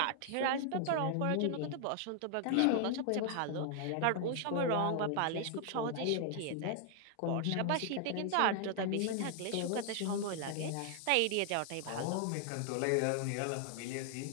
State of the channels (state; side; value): different; both; correlation 0.00